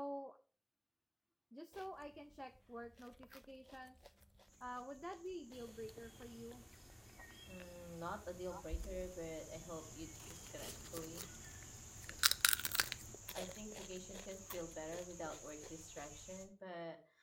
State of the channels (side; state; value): both; identical; correlation 1.00